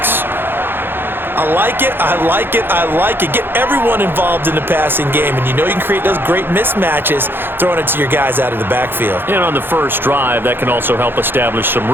I like it, I like it, I like it. Get everyone involved in the passing game, and you know you can create those great mismatches throwing it to your guys out of the backfield. And on the first drive, that can also help establish some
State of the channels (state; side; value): late; left; 0.10 ms